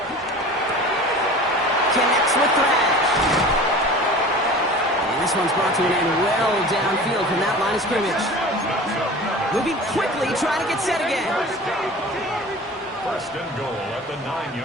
Connects with Thrash. And this one's brought to an end well downfield from that line of scrimmage. Moving quickly, trying to get set again. 1st and goal at the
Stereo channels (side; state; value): both; normal; correlation 0.38